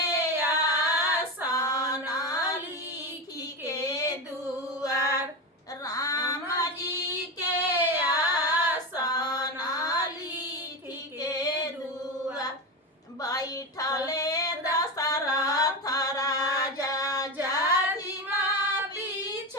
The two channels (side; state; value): both; normal; correlation 0.19